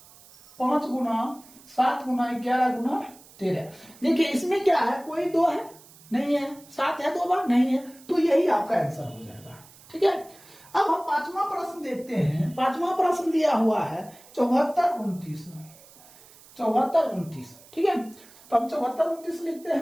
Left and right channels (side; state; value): right; noise; hiss, 23 dB below the sound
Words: 5 गुना 7 गुना 11 गुना 13। देखिए इसमें क्या है, कोई 2 है नहीं है, 7 है 2 बार नहीं है, तो यही आपका आंसर हो जाएगा। ठीक है, अब हम पांचवा प्रश्न देखते हैं। पांचवा प्रश्न दिया हुआ है 74 29, ठीक है, तो हम 74 29 लिखते